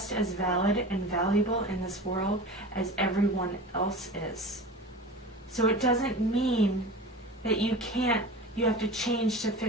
as valid and valuable in this world as everyone else is. So it doesn't mean that you have to change to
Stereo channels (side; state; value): both; normal; correlation 0.34